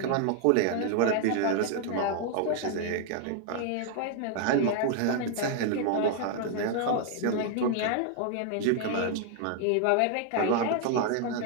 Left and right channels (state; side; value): different; both; correlation 0.00